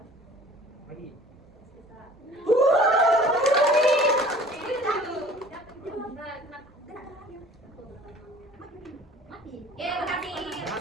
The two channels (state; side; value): normal; both; correlation 0.48